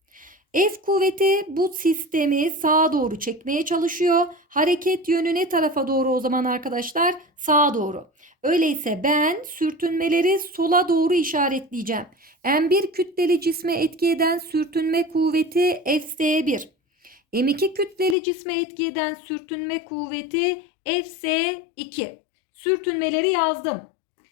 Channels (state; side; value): drops out; right; at 18.2 s